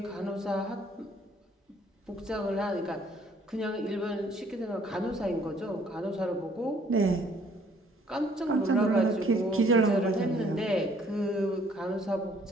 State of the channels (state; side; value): normal; both; correlation 0.61